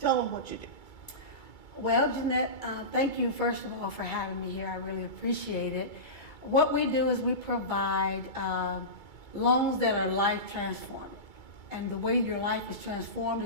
them what you do. Well, Jeanette, thank you first of all for having me here. I really appreciate it. What we do is we provide loans that are life transforming. And the way your life is transformed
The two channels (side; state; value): right; late; 2.3 ms